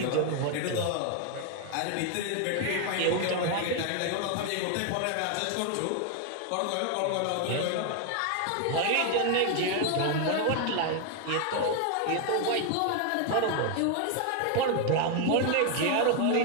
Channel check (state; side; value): different; both; correlation 0.01